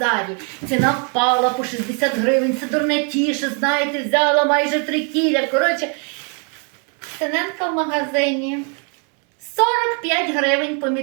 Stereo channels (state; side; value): quieter; left; 38.7 dB